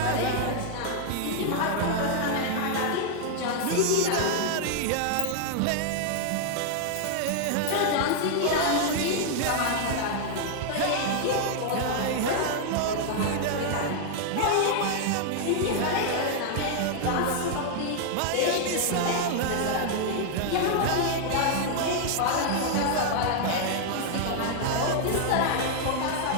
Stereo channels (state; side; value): different; both; correlation 0.00